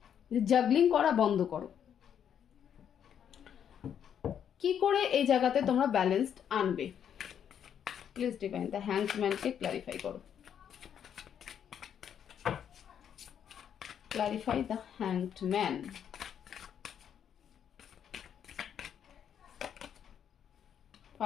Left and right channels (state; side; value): quieter; right; 8.8 dB